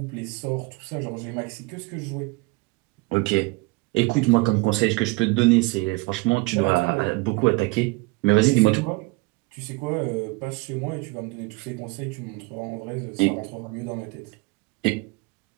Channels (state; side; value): quieter; left; 25.1 dB